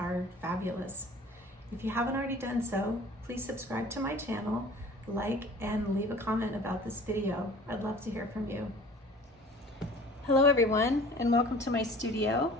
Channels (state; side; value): normal; both; correlation 0.46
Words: fabulous. If you haven't already done so, please subscribe to my channel, like, and leave a comment about this video. I'd love to hear from you. Hello everyone, and welcome to my studio.